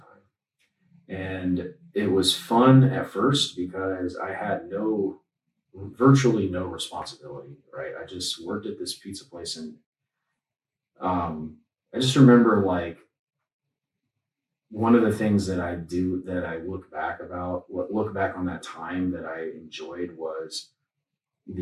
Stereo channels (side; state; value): both; identical; correlation 1.00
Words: And it was fun at first because I had virtually no responsibility, right? I just worked at this pizza place, and I just remember like one of the things that I look back on that time that I enjoyed was